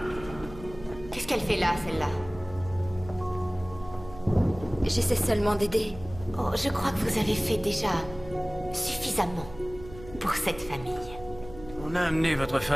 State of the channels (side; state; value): right; noise; hum, 16 dB below the sound